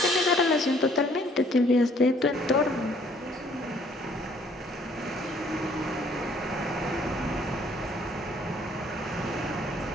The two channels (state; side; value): normal; both; correlation 0.61